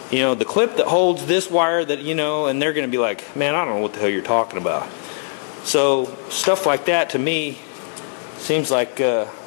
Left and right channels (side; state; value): right; silent; 60 dB below the other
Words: The clip that holds this wire that, and they're going to be like, man, I don't know what the hell you're talking about. So stuff like that to me seems like